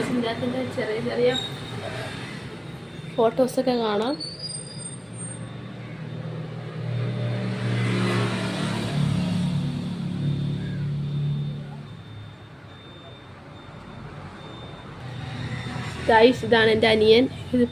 ഇതിൻ്റെ അകത്തിൻ്റെ ചെറിയ ചെറിയ ഫോട്ടോസൊക്കെ കാണാം. ഗൈസ്, ഇതാണ് എൻ്റെ അനിയൻ. ഇത്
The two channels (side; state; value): both; identical; correlation 1.00